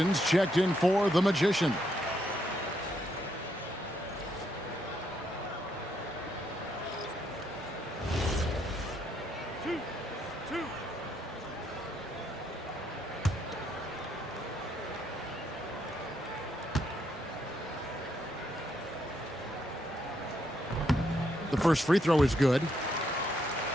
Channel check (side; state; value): both; normal; correlation 0.75